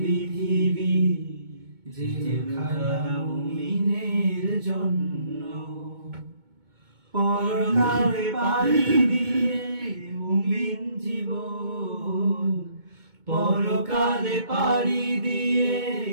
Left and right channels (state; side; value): late; left; 2.2 ms